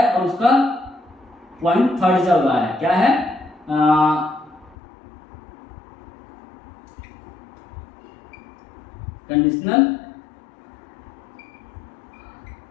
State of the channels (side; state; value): right; drops out; at 4.8 s